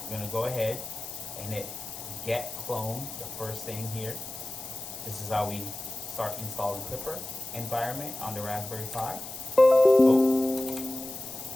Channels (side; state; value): left; noise; hiss, 11 dB below the sound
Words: we're gonna go ahead and hit get clone, the first thing here. This is how we start installing Klipper environment on the Raspberry Pi. Oh.